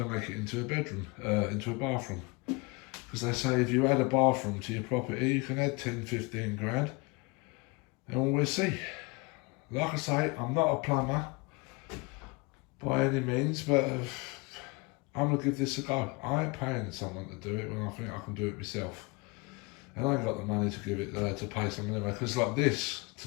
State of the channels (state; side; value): quieter; right; 27.5 dB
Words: to make it into a bedroom, into a bathroom, because they say if you add a bathroom to your property you can add 10-15 grand, and we'll see. Like I say, I'm not a plumber by any means, but I'm going to give this a go. I ain't paying someone to do it when I think I can do it myself. And I ain't got the money to give it to pay someone anyway, because like this, to